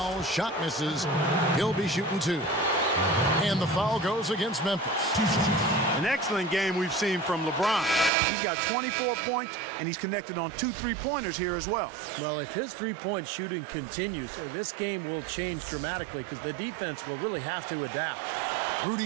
shot misses. He'll be shooting 2. And the foul goes against Memphis. An excellent game we've seen from LeBron. He's got 24 points, and he's connected on 2 3-pointers here as well. Well, if his three-point shooting continues, this game will change dramatically because the defense will really have to adapt.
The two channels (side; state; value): left; drops out; at 8.1 s